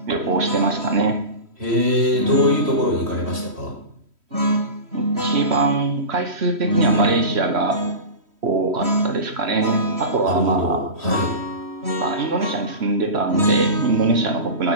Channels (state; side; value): late; left; 3.1 ms